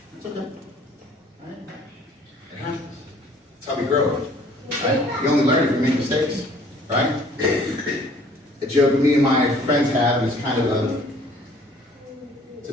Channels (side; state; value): both; normal; correlation 0.56